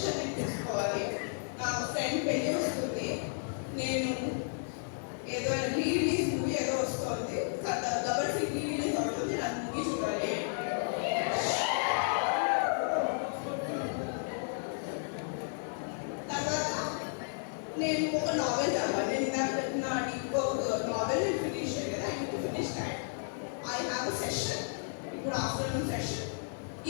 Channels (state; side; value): silent; right; 56 dB below the other